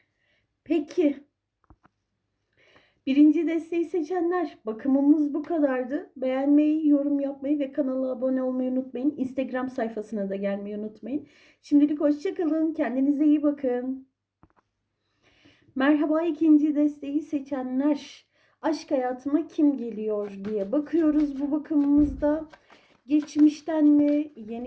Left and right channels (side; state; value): both; identical; correlation 1.00